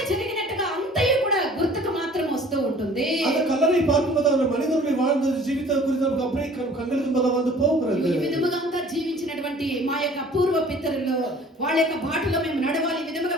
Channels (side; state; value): both; normal; correlation 0.50